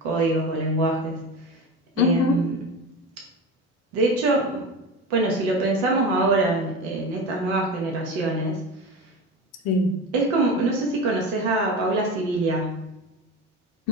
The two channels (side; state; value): both; normal; correlation 0.27